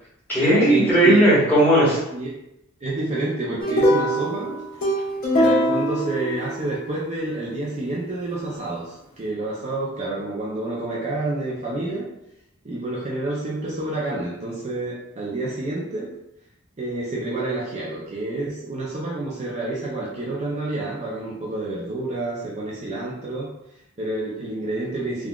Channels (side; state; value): both; normal; correlation 0.51